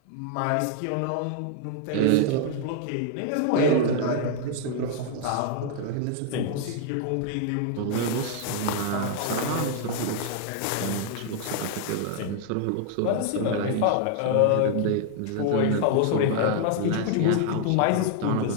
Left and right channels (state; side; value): different; both; correlation 0.00